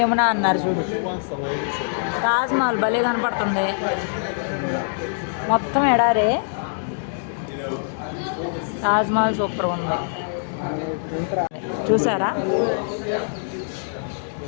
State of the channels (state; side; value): silent; right; digital silence